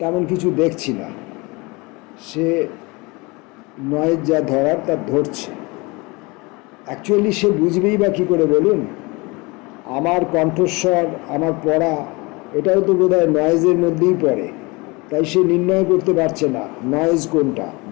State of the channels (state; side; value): quieter; right; 25.8 dB